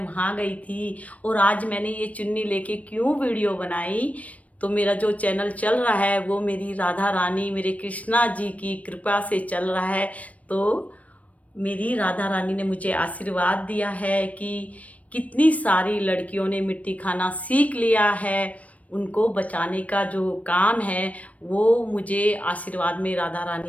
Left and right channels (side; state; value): right; late; 0.067 ms